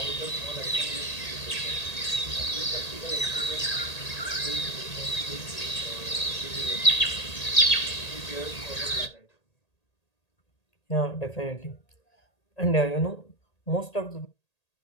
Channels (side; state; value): right; late; 1.8 ms